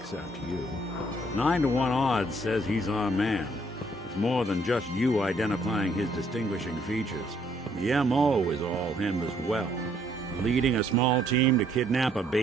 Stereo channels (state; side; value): normal; both; correlation 0.67